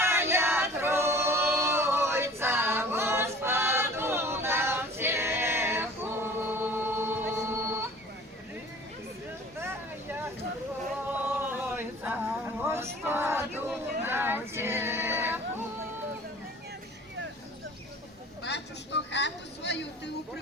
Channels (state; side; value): normal; both; correlation 0.46